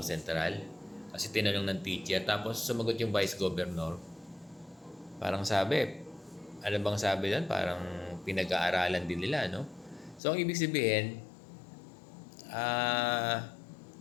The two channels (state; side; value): drops out; right; at 10.2 s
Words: Kasi tinanong ng teacher, tapos sumagot yung Vice Governor. Parang sabi, ano bang sabi doon? Parang pinag-aaralan din nila, no? So, ang ibig sabihin,